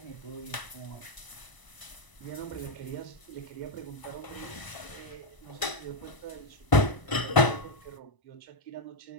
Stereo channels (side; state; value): right; late; 1.0 ms